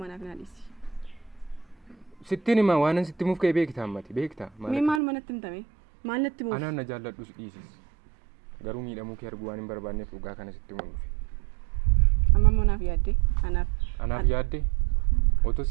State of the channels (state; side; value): drops out; left; at 5.0 s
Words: naa dhiisi. Sittiin himaa waan sitti himuuf ka'e beektaa ammati beektaa. Mee maal manatti himtame? Maal natti himuuf? Anaan na jaalladhus dhiisis. Garuu miidhamuu kee arguu waan hin barbaanneef dhugaa kana sitti himuun dhufe. Amma immoo naaf yaaddee? Anaaf yaaddee? Otoo